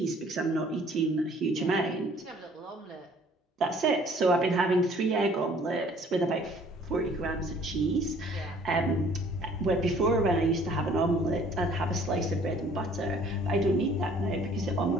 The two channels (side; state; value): both; normal; correlation 0.56